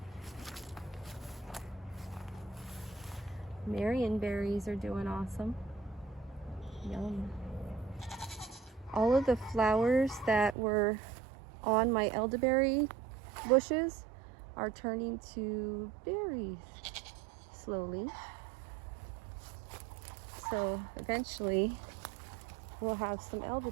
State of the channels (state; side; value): drops out; left; at 10.6 s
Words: Marion berries are doing awesome. Yum. All of the flowers that were on my elderberry bushes are turning to berries slowly. So eventually we'll have some